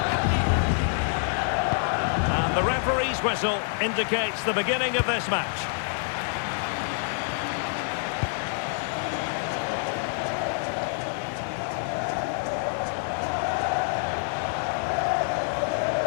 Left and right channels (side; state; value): right; silent; 60 dB below the other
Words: And the referee's whistle indicates the beginning of this match.